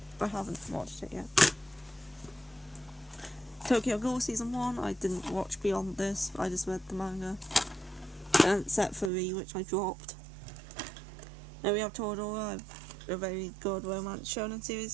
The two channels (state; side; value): drops out; left; at 9.1 s